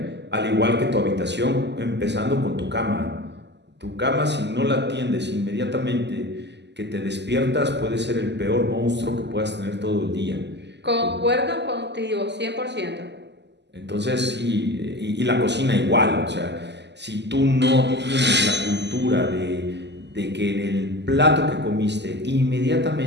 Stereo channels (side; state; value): left; late; 0.50 ms